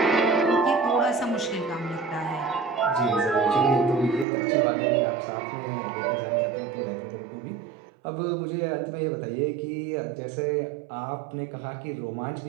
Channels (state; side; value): drops out; left; at 4.2 s